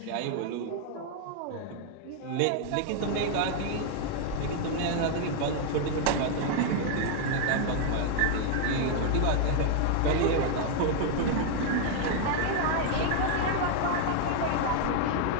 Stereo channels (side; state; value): both; different; correlation 0.00